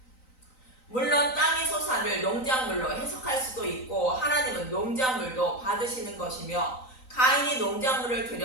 물론 땅의 소산을 농작물로 해석할 수도 있고 하나님은 농작물도 받으시는 것이며 가인이 농작물을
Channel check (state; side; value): late; right; 3.9 ms